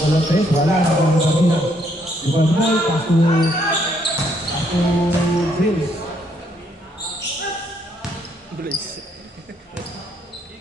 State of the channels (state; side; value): normal; both; correlation 0.70